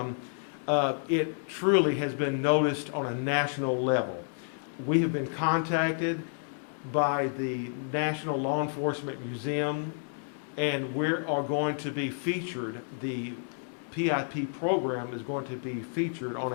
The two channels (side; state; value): right; silent; digital silence